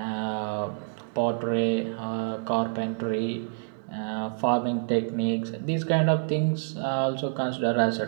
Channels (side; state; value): left; silent; digital silence